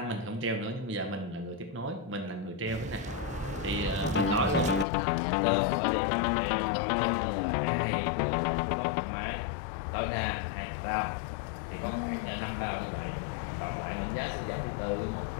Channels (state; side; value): drops out; right; at 4.9 s